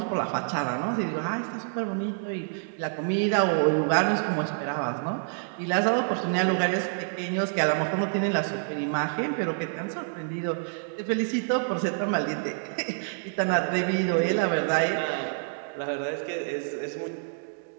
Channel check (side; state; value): left; silent; digital silence